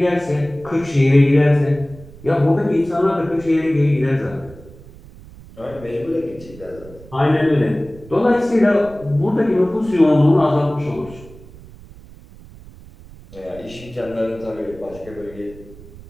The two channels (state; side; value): noise; right; rumble, 20 dB below the sound